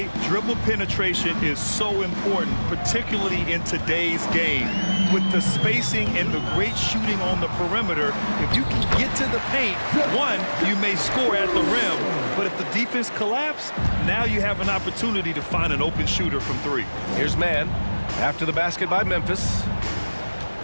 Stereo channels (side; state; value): both; inverted; correlation -1.00